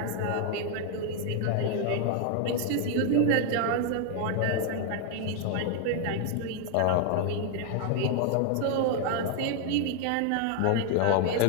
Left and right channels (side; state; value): both; different; correlation 0.00